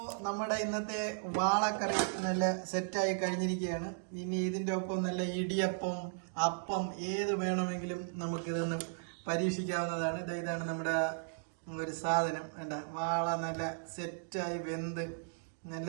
നമ്മുടെ ഇന്നത്തെ വാളക്കറി നല്ല സെറ്റായി കഴിഞ്ഞിരിക്കുകയാണ്. ഇനി ഇതിൻ്റെ ഒപ്പം നല്ല ഇടിയപ്പം, അപ്പം ഏത് വേണമെങ്കിലും നമുക്കിതൊന്ന് പരീക്ഷിക്കാവുന്നതാണ്. ഇതാണ് നമ്മുടെ ഒരു സാധനം. വേണ്ട, വാള നല്ല സെറ്റായി വെന്ത് നല്ല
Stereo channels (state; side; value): silent; left; digital silence